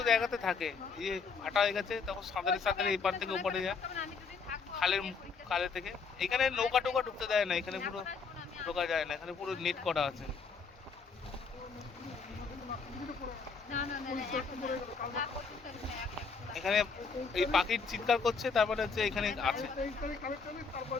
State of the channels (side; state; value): right; quieter; 5.1 dB